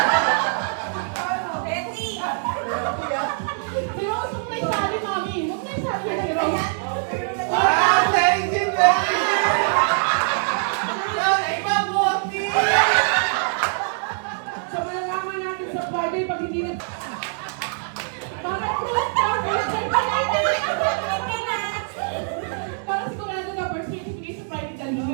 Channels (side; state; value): left; silent; digital silence